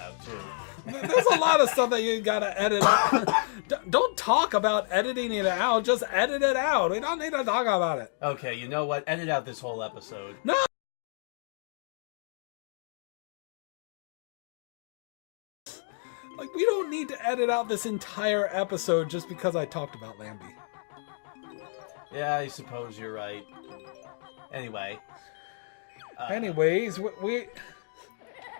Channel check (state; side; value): silent; right; digital silence